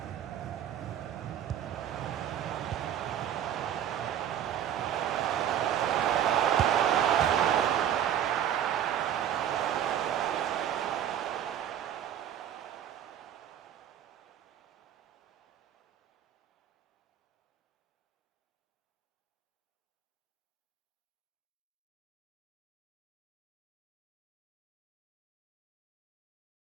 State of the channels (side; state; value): left; quieter; 10.1 dB